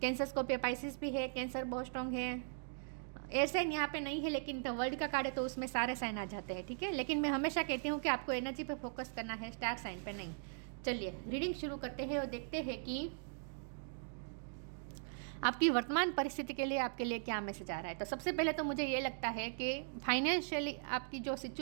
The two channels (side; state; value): left; silent; digital silence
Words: कैंसर, स्कॉर्पियो, पाइसिस भी है। कैंसर बहुत स्ट्रांग है। एयर साइन यहाँ पे नहीं है, लेकिन द वर्ल्ड का कार्ड है तो उसमें सारे साइन आ जाते हैं, ठीक है। लेकिन मैं हमेशा कहती हूँ कि आपको एनर्जी पे फोकस करना है, स्टार साइन पे नहीं। चलिए रीडिंग शुरू करते हैं और देखते हैं कि आपकी वर्तमान परिस्थिति के लिए आपके लिए क्या मैसेज आ रहा है। तो सबसे पहले तो मुझे ये लगता है कि फाइनेंशियली आपकी जो